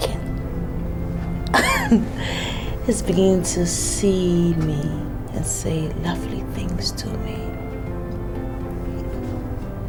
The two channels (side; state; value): both; identical; correlation 1.00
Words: It's beginning to see me and say lovely things to me.